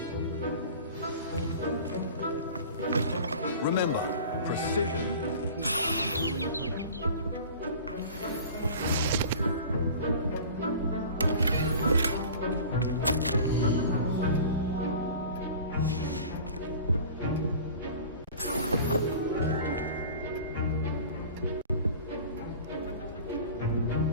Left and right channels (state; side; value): inverted; both; correlation -0.40